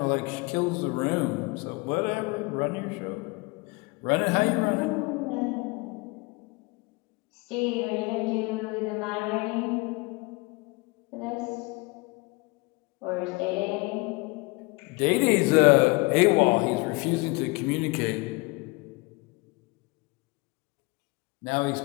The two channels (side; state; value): right; quieter; 26.5 dB